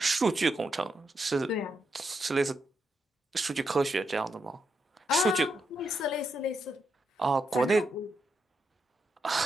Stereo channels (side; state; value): both; normal; correlation 0.82